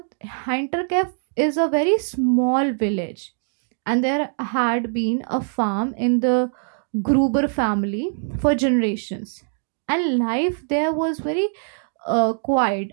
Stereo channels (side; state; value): left; silent; digital silence